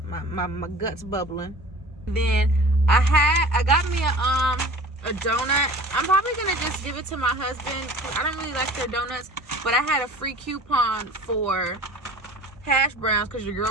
guts bubbling. Then I got me a donut. I'm probably gonna just give it to my husband. I don't really like their donuts, but I had a free coupon for hash browns because your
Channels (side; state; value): both; normal; correlation 0.42